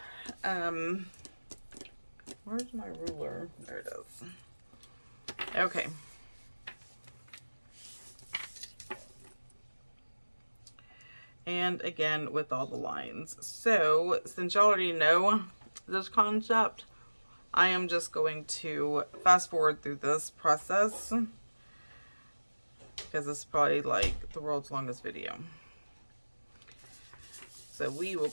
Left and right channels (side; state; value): both; inverted; correlation -1.00